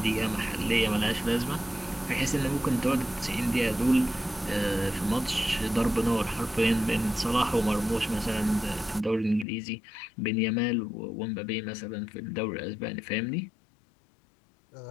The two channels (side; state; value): right; drops out; at 9.5 s